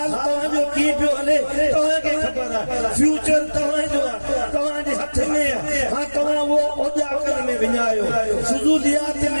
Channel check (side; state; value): both; inverted; correlation -1.00